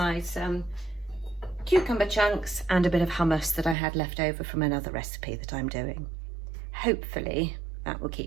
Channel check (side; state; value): left; drops out; at 3.8 s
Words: some cucumber chunks and a bit of hummus that I had left over from another recipe that I'm doing. Hopefully that will